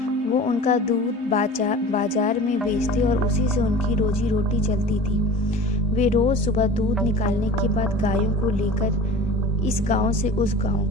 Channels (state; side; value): normal; both; correlation 0.37